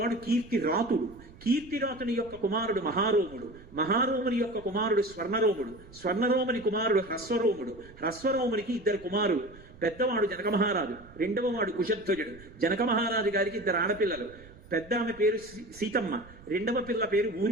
కీర్తిరాతుడు, కీర్తిరాతుని యొక్క కుమారుడు మహారోముడు, మహారోముని యొక్క కుమారుడు స్వర్ణరోముడు, స్వర్ణరోముని కుమారుడు హ్రస్వరోముడు, హ్రస్వరోమునికి ఇద్దరు కుమారులు, పెద్దవాడు జనక మహారాజు, రెండవ వాడు కుశధ్వజుడు. జనక మహారాజు గారికి ఇద్దరు ఆడపిల్లలు, పెద్ద ఆమె పేరు సీతమ్మ, రెండవ పిల్ల పేరు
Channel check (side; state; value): right; noise; rumble, 21 dB below the sound